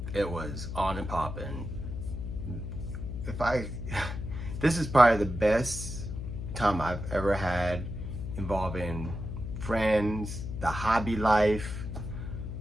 It was on and popping. This is probably the best time I've ever had involving friends, the hobby life.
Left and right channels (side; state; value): left; noise; hum, 6 dB below the sound